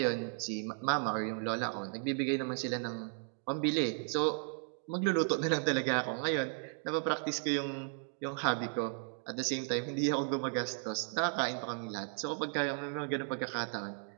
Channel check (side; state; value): left; silent; 54 dB below the other